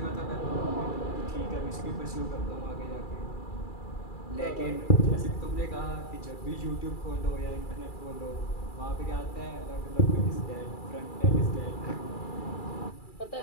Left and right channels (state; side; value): late; right; 2.3 ms